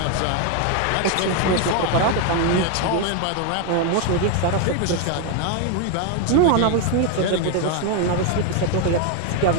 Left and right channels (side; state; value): both; different; correlation 0.01